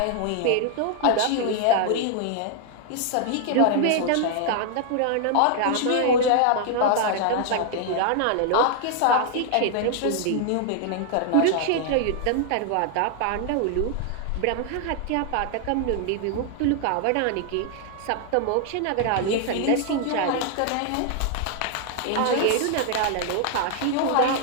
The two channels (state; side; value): different; both; correlation 0.00